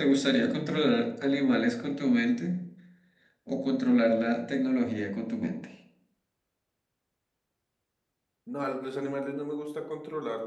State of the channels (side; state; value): both; identical; correlation 1.00